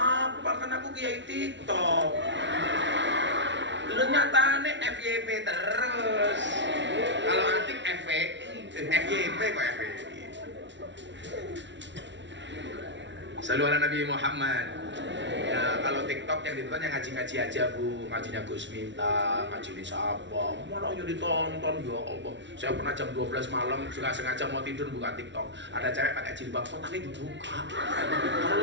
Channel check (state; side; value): late; left; 0.53 ms